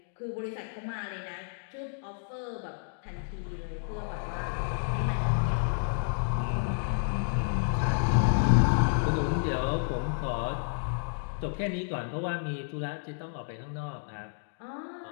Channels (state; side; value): silent; right; digital silence